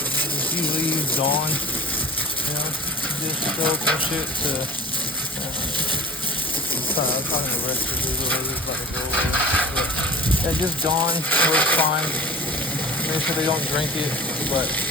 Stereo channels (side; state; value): both; normal; correlation 0.39